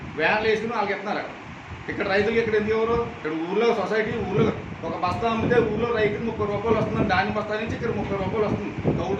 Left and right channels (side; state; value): both; identical; correlation 1.00